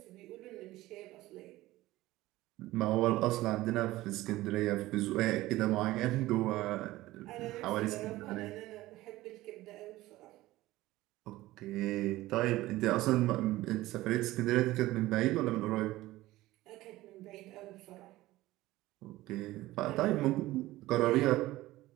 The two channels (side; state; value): left; quieter; 17.3 dB